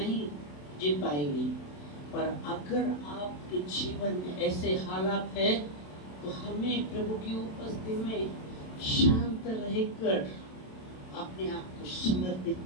जीत पाएंगे। पर अगर आपके जीवन में ऐसे हालात है, तो हमें प्रभु की उपस्थिति में शांत रहकर अपने आप को समर्पित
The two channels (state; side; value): late; right; 27 ms